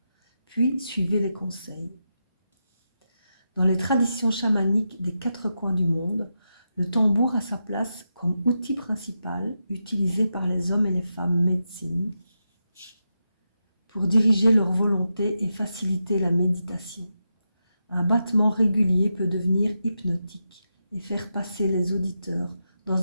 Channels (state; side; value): inverted; both; correlation -0.87